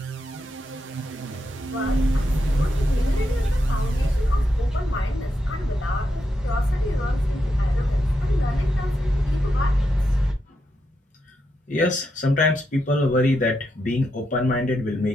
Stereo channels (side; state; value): both; normal; correlation 0.83